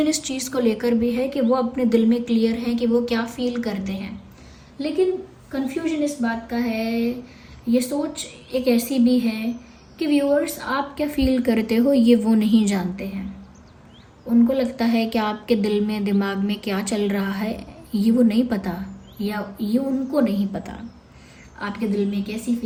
इस चीज़ को लेकर भी है कि वो अपने दिल में क्लियर हैं कि वो क्या फील करते हैं, लेकिन कन्फ्यूजन इस बात का है, ये सोच एक ऐसी भी है कि व्यूअर्स आप क्या फील करते हो ये वो नहीं जानते हैं। उनको लगता है कि आपके दिल में, दिमाग में क्या चल रहा है ये वो नहीं पता, या ये उनको नहीं पता। आपके दिल में कैसी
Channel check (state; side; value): identical; both; correlation 1.00